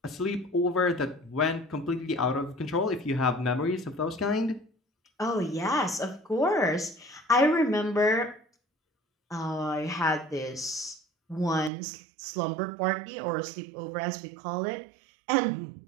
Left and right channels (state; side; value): drops out; left; at 11.7 s